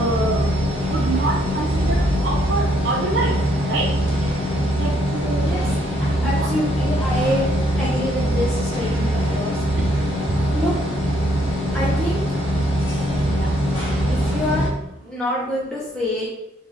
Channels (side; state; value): both; normal; correlation 0.70